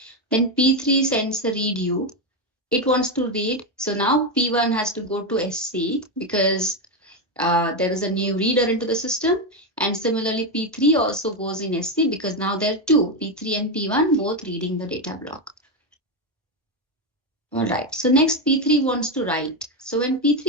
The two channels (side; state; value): both; normal; correlation 0.09